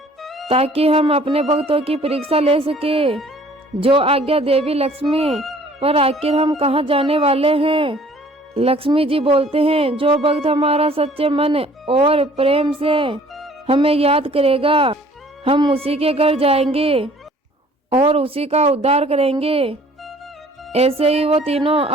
ताकि हम अपने भक्तों की परीक्षा ले सके। जो आज्ञा देवी लक्ष्मी, पर आखिर हम कहाँ जाने वाले हैं। लक्ष्मी जी बोलते हैं, जो भक्त हमारा सच्चे मन और प्रेम से हमें याद करेगा, हम उसी के घर जाएंगे और उसी का उद्धार करेंगे। ऐसे ही वो तीनों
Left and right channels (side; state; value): both; normal; correlation 0.54